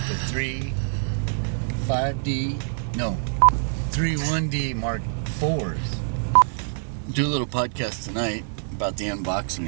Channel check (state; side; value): silent; left; digital silence